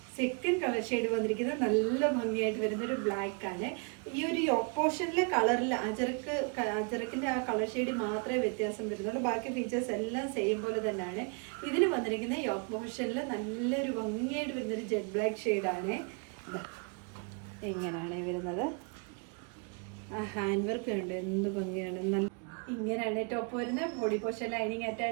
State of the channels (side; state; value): left; quieter; 37.4 dB